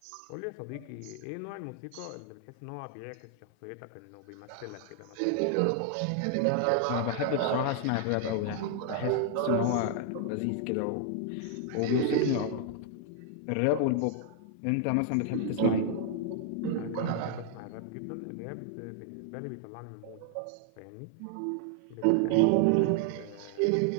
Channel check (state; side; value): different; both; correlation 0.00